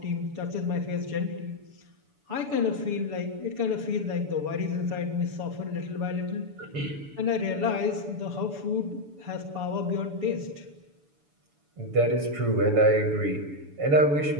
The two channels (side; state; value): left; late; 7.0 ms